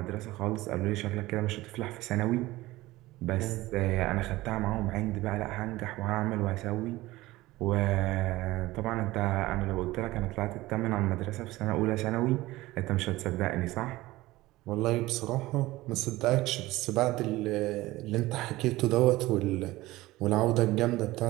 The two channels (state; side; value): quieter; left; 18.4 dB